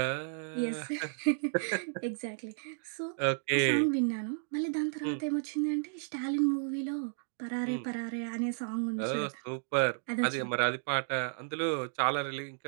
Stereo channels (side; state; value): left; silent; digital silence